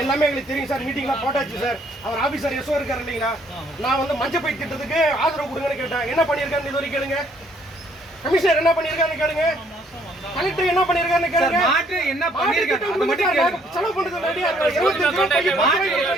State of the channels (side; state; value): both; normal; correlation 0.65